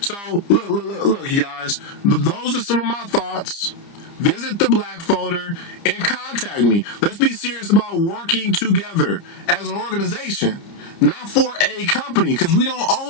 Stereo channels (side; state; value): right; late; 30 ms